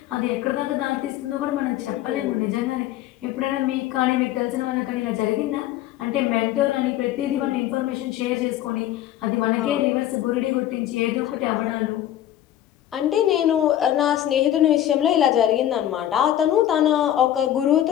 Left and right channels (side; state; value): right; quieter; 12.3 dB